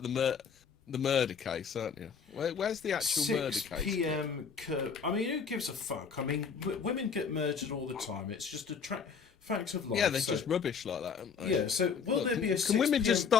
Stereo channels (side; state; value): right; quieter; 6.1 dB